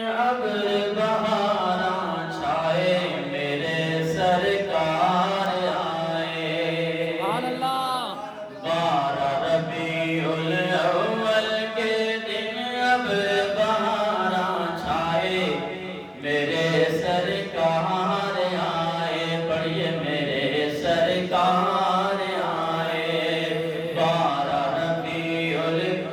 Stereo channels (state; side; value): identical; both; correlation 1.00